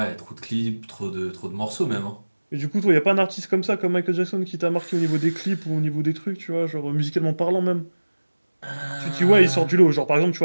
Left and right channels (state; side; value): inverted; both; correlation -1.00